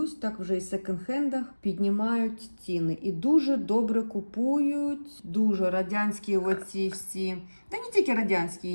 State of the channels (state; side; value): inverted; both; correlation -1.00